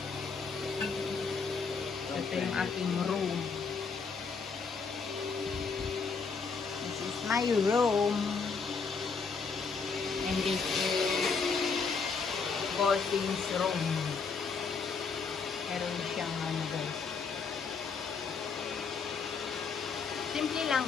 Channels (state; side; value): quieter; right; 5.2 dB